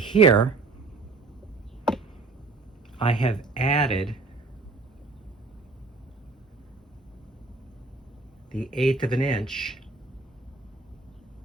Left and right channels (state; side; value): quieter; left; 3.8 dB